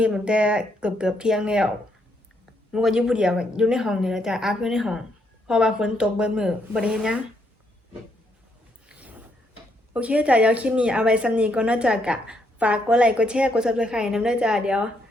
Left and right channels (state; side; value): normal; both; correlation 0.74